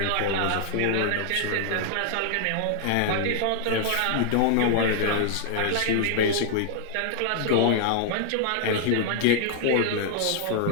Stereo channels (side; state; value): both; different; correlation 0.00